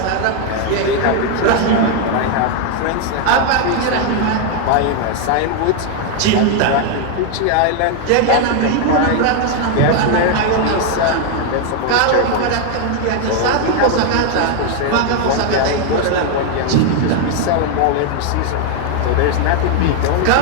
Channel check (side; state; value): both; different; correlation 0.01